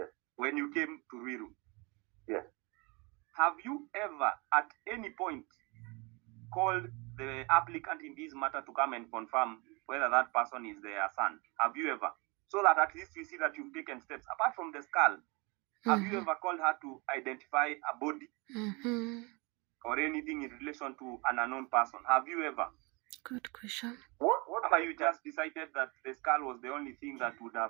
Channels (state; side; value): quieter; left; 28.1 dB